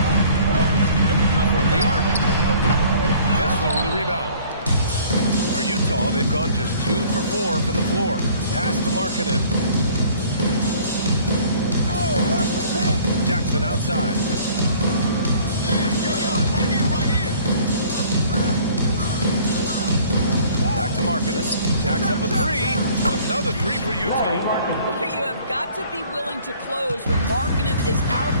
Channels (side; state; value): both; inverted; correlation -0.53